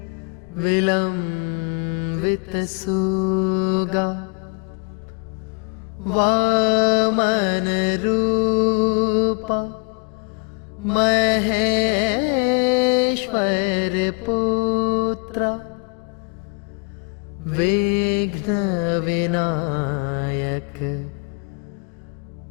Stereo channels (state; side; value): quieter; right; 36.1 dB